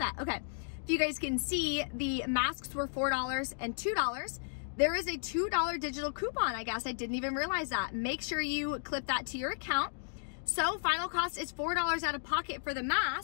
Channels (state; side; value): silent; right; digital silence